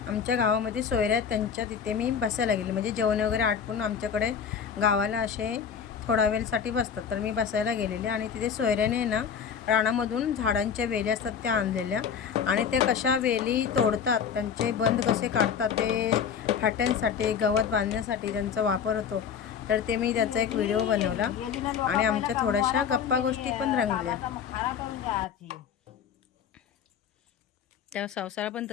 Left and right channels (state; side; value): quieter; right; 7.3 dB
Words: आमच्या गावामध्ये सोयऱ्या त्यांच्या तिथे मी बसायला गेले. म्हणजे जेवण वगैरे आटपून आमच्याकडे गावाला असे थोडा वेळसाठी बसतात, तर मी बसायला गेलेले आणि तिथे सोयऱ्याने ना रानामधून झाडांच्या वेली असतात त्या आणलेल्या आणि त्या कशा वेली तोडतात, त्यांचे बंद कसे काढतात, ते फाट्यांसाठी गवत बांधण्यासाठी त्यांचा वापर होतो. तर ते मी त्याचा एक व्हिडिओ बनवला आणि आमच्या थोड्याशा गप्पा गोष्टी पण रंगल्या. त्या संसार पण